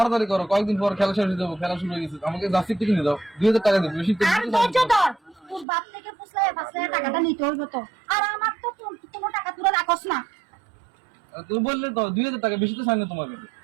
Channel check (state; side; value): drops out; left; at 5.7 s